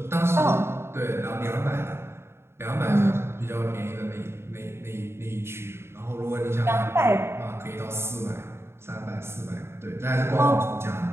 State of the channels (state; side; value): late; left; 0.12 ms